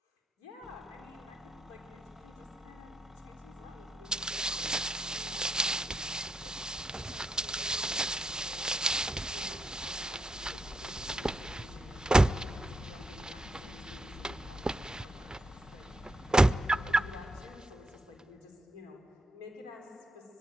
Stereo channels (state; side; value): normal; both; correlation 0.80